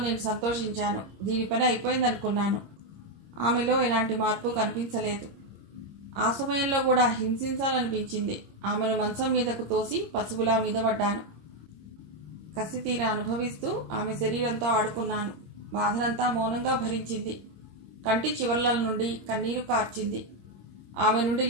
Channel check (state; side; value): late; left; 26 ms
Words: నేను సంతోషించాను. దీని పని అయిపోయిందనుకున్నాను. ఆమెలో ఎలాంటి మార్పు కనిపించలేదు. ఆ సమయంలో కూడా హింసించాలనిపించింది. ఆమెను మంచం మీదకు తోసి పసుపులా మీద పడ్డాను. కసి తీరా అనుభవిస్తూ ఆమె శరీరంతో ఆడుకున్నాను. బాధనంతా మౌనంగా భరించింది. కంటి చివర్ల నుండి కన్నీరు కార్చింది. ఆమె నుండి